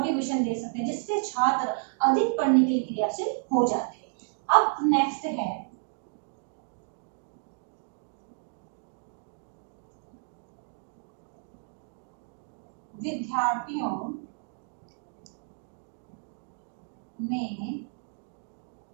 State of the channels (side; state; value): left; silent; digital silence